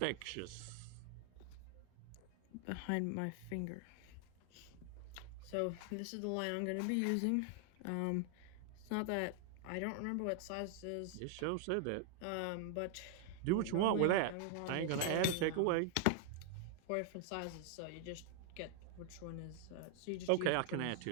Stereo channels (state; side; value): different; both; correlation 0.00